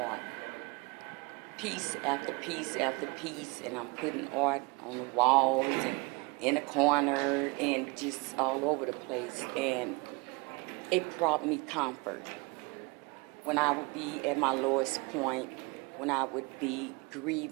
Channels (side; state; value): left; quieter; 27.8 dB